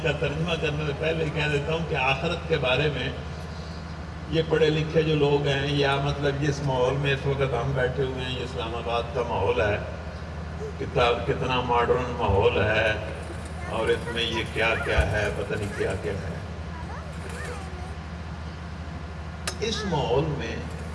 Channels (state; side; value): identical; both; correlation 1.00